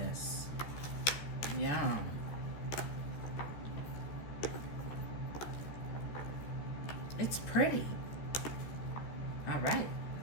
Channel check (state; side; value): late; right; 14 ms